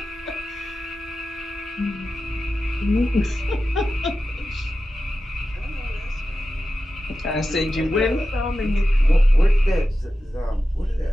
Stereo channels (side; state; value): both; normal; correlation 0.93